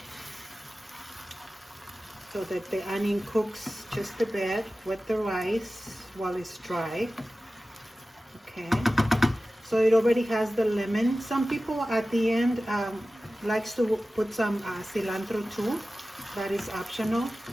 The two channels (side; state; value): both; normal; correlation 0.95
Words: so that the onion cooks just a bit with the rice while it's dry. Okay, so it already has the lemon. Some people at the end likes to put some cilantro too. That is optional.